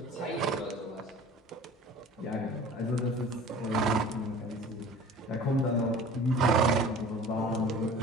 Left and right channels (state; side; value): normal; both; correlation 0.44